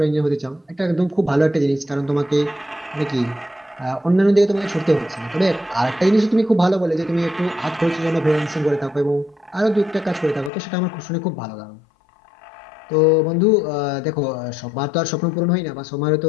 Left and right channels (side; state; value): right; drops out; at 10.5 s